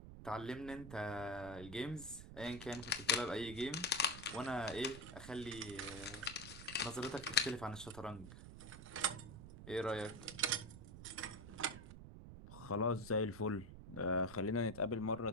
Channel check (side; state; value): right; noise; rumble, 13 dB below the sound